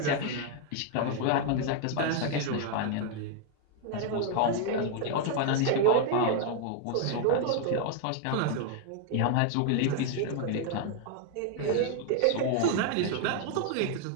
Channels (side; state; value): both; different; correlation 0.00